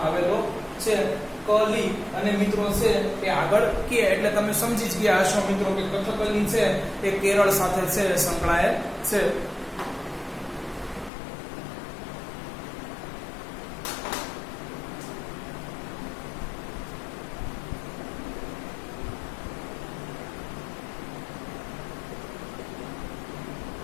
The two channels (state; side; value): drops out; right; at 11.1 s